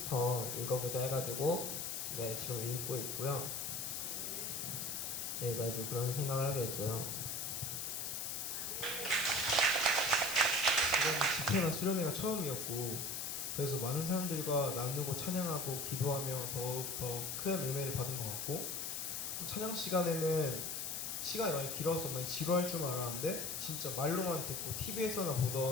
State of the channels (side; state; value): left; noise; hiss, 3 dB below the sound